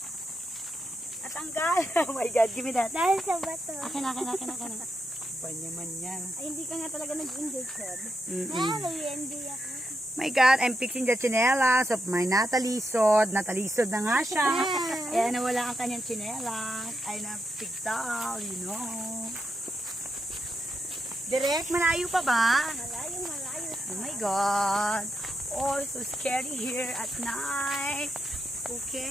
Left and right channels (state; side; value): normal; both; correlation 0.84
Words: Natanggal. Oh my God, give me that. Dahil sa bato. Akin. Panyaman yan. Ay, hindi ka nga talaga nag-enjoy, Seb. Mm-mm. Nag-enjoy ako. My God, I'm fixing the chinelas of my natalisod. Natalisod na nga siya. Kaya nawala ang kanyang chinelas. Ay na-pigtal, you know. Direk, malayo pa ba? Malayo. Oh my God. Oh, so scary here at night.